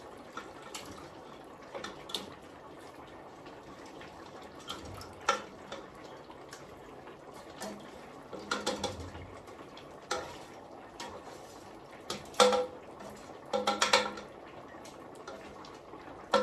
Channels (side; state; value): both; identical; correlation 1.00